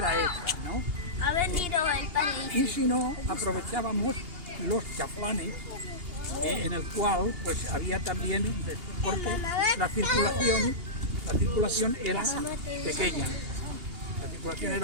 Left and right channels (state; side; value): late; left; 2.8 ms